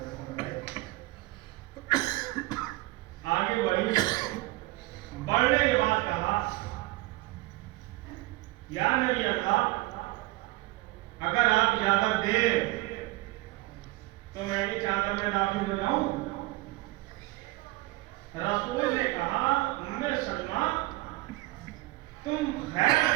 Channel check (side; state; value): left; quieter; 20.3 dB